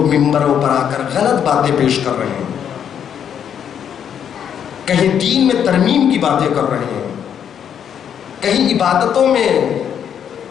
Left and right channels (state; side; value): quieter; right; 8.6 dB